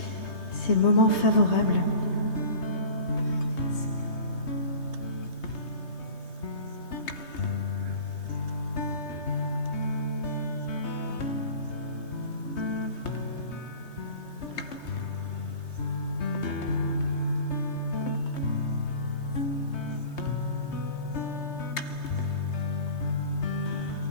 C'est le moment favorable.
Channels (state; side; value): late; right; 3.2 ms